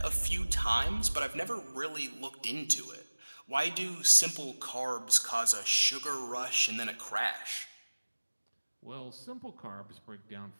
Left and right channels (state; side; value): inverted; both; correlation -1.00